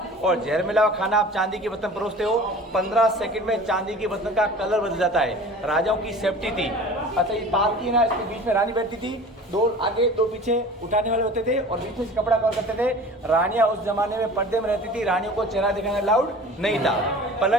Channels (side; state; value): both; normal; correlation 0.41